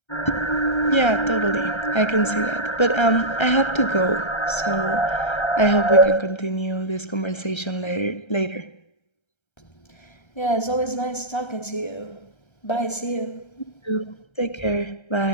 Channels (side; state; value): right; late; 1.3 ms